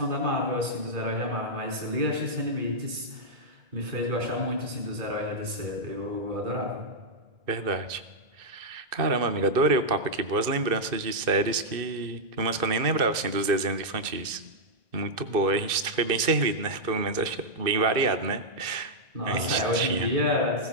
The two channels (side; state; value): left; late; 2.5 ms